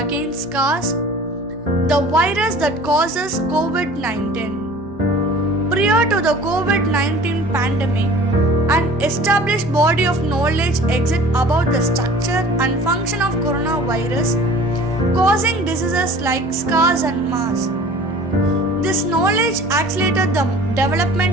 SARS, the virus that causes COVID-19. Prior to the COVID-19 pandemic, an established body of knowledge exists about the structure and function of coronavirus causing diseases like SARS and MERS. This knowledge accelerated the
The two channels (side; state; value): both; normal; correlation 0.45